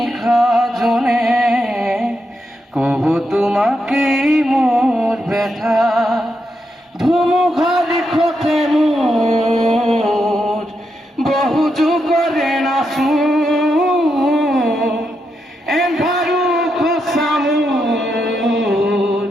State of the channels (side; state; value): both; normal; correlation 0.83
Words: জনে কব তোমাকেই মোর ব্যথা। ধুমুঘার খতে মোর বহু যুগরে নাচো এন্ধাৰো খচা মোৰ